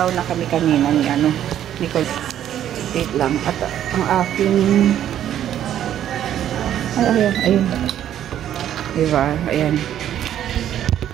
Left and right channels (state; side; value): quieter; left; 10.9 dB